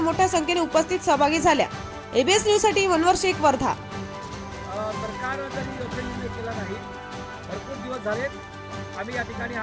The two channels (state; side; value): identical; both; correlation 1.00